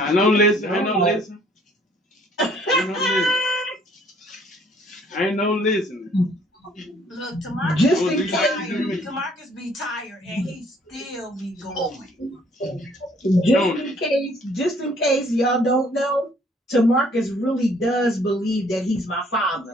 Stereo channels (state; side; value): normal; both; correlation 0.61